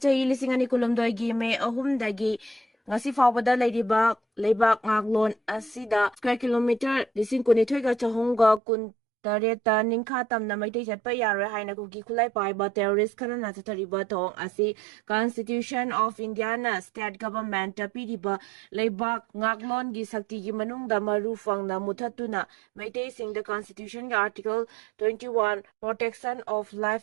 lising ani kulumdoy gi me ahumdagi ngasi fawbada leiriba leibak ngaglon asida square kilometer lising kunithoy ga chahongga kun tareta ningkha tamna maitay chatpa yaroi haina kuki khulai paiba terrorist khana na chathariba thong asi Constitution of India na state government ta piriba leibak ngaglon gi sakti gi manungda marufang na muthatuna maitay sing the constitution ga article 21 protection of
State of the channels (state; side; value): drops out; left; at 8.6 s